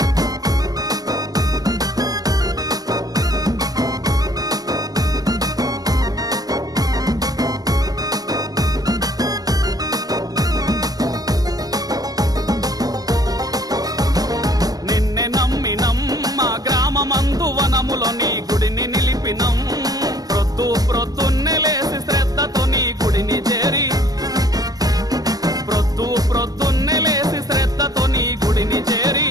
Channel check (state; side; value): late; left; 0.18 ms